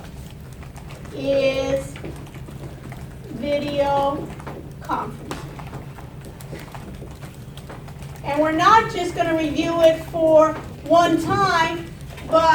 is video conference. And we're not just going to review it for one time,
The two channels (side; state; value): both; identical; correlation 1.00